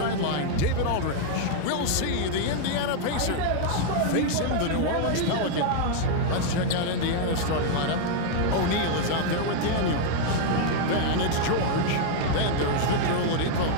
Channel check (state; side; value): different; both; correlation 0.00